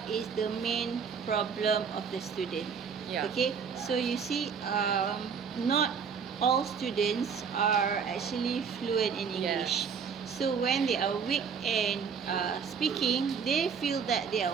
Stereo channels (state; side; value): quieter; left; 6.4 dB